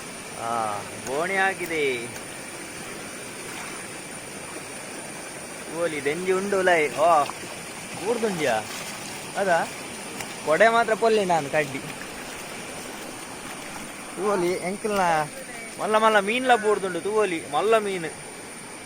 ಬೋಣಿ ಆಗಿದೆ ಓಲಿ ದೆಂಜಿ ಉಂಡು ಲೈ ಬೂರ್ದುಂಜಿಯಾ ಅದಾ ಕೊಡೆ ಮಾತ್ರ ಪೊಲ್ಲಿ ನಾನು ಕಡ್ಡಿ ತೂವಲಿ ಎಂಕಲ್ನ ಮಲ್ಲ ಮಲ್ಲ ಮೀನ್ಲ ಬೂರ್ದುಂಡು ತೂವಲಿ ಮಲ್ಲ ಮೀನು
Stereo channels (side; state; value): both; identical; correlation 1.00